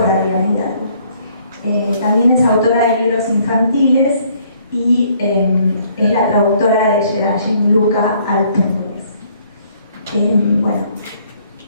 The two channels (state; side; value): inverted; both; correlation -0.63